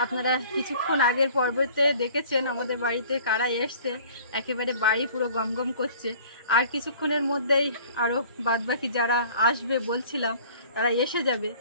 আপনারা কিছুক্ষণ আগের পর্বতে দেখেছেন আমাদের বাড়িতে কারা এসছে, একেবারে বাড়ি পুরো গমগম করছে। আর কিছুক্ষণের মধ্যেই আরো বাদবাকি যারা আসবে বলছিলাম তারা এসে যাবে।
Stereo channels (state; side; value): inverted; both; correlation -0.49